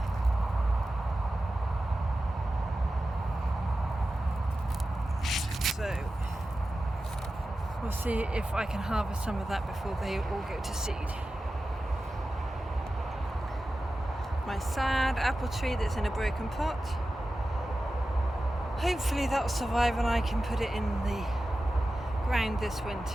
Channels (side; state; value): both; normal; correlation 0.94